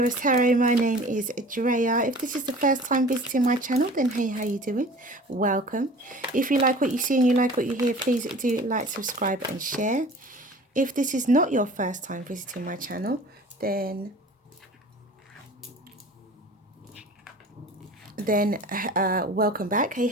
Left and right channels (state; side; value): normal; both; correlation 0.43